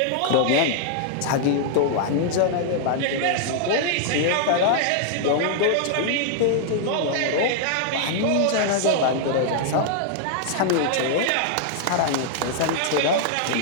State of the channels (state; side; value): different; both; correlation -0.01